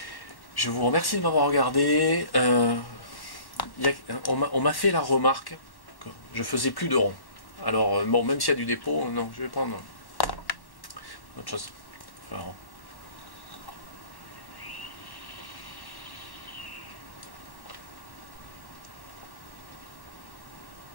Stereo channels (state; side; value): late; right; 1.1 ms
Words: Je vous remercie de m'avoir regardé. On m'a fait la remarque que je faisais plus de ronds. Alors, bon, même s'il y a du dépôt, non, je vais prendre autre chose. Faire un rond.